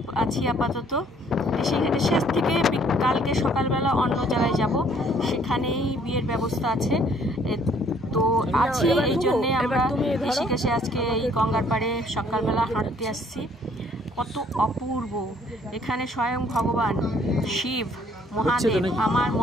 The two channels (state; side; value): normal; both; correlation 0.62